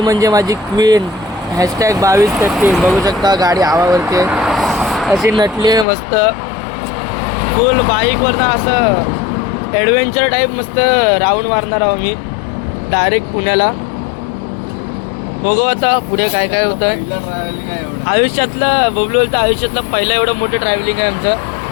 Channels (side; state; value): right; drops out; at 5.9 s